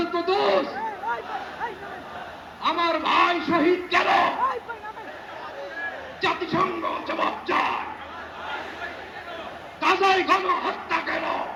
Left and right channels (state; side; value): identical; both; correlation 1.00